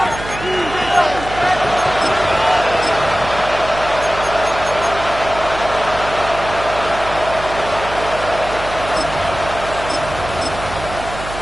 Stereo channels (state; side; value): noise; right; hum, 11 dB below the sound